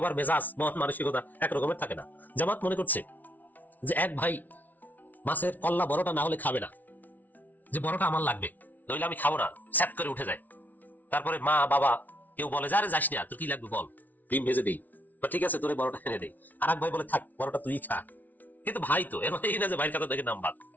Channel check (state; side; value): late; right; 0.079 ms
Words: মেজাজ মন মানসিকতা একরকমের থাকে না। জামাত মনে করছে যে এক ভাই মাছের কল্লা বড়টা না হলে খাবে না, যে বড়টা আমার লাগবে, নইলে আমি খাবো না, স্যাপ করে উঠে যায়। তারপরে মা বাবা কেউ বলে যারে যাস না, তোর কি লাগবে বল, ডিম ভেজে দিই, বা ঠিক আছে তোরে বড়টা এনে দেই। আর এক ভাই বলে থাক বড়টা তুই খা, কিন্তু ভাই তো এর এই না যে ভাইয়ের কথা দেখে নাম বাদ।